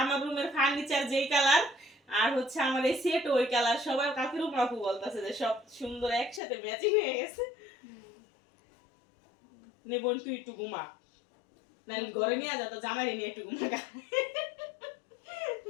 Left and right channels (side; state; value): right; drops out; at 6.4 s